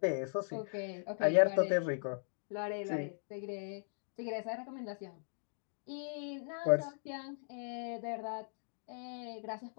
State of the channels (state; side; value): silent; right; digital silence